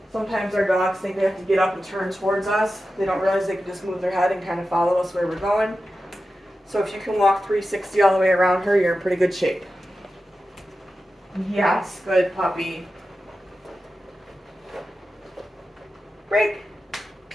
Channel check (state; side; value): normal; both; correlation 0.92